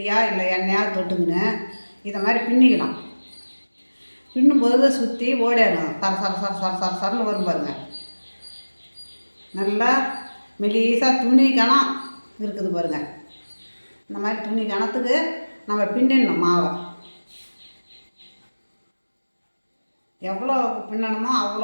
இல்லை எண்ணெயாக தொட்டுங்கன்னு இதை மாதிரி பின்னிக்கலாம். பின்னும்போது சுற்றி ஓடிடணும். சரன்னு வரும் பாருங்கள். நல்லா மெலிசாக துணி கணம் இருக்குது பாருங்கள். இந்த மாதிரி துணி கணத்துக்கு நம்ம பின்னிடணும் மாவை. எவ்வளோ பின்னணுமோ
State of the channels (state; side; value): inverted; both; correlation -1.00